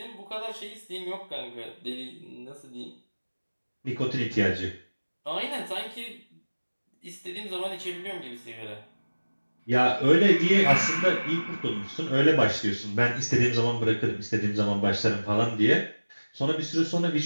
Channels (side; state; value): both; inverted; correlation -1.00